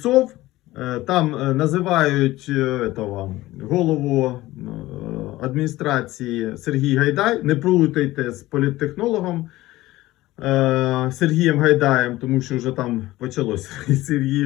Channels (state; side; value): quieter; right; 17.4 dB